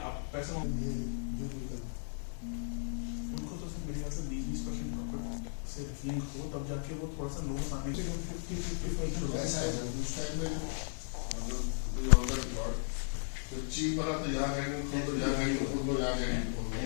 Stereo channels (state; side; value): silent; right; digital silence